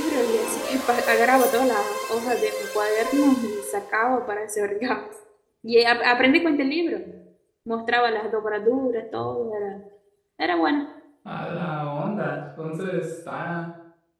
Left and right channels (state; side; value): identical; both; correlation 1.00